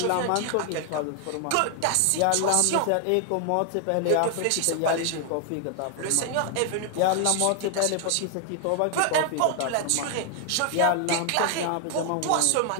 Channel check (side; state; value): both; different; correlation 0.00